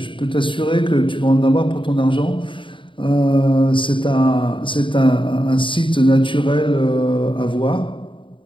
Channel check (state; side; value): late; right; 0.24 ms